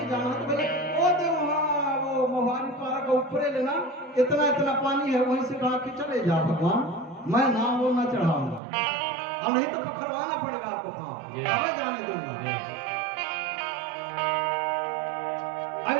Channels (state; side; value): drops out; left; at 8.6 s